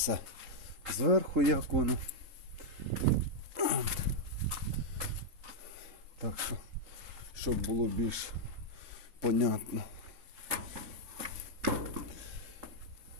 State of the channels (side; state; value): left; late; 3.9 ms